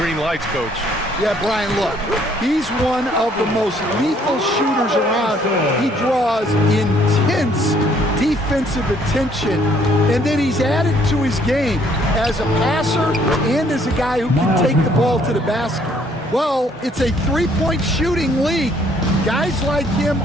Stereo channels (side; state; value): both; normal; correlation 0.64